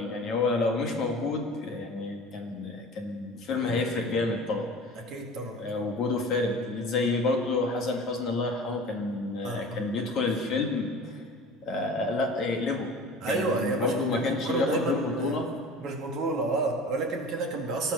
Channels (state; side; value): normal; both; correlation 0.39